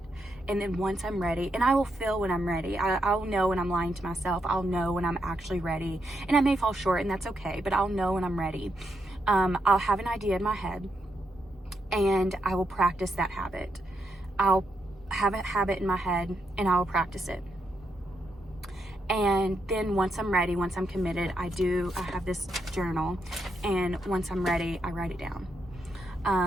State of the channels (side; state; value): both; normal; correlation 0.81